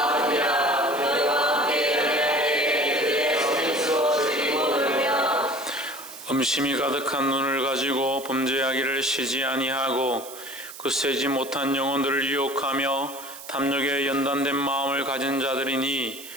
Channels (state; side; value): noise; right; hiss, 14 dB below the sound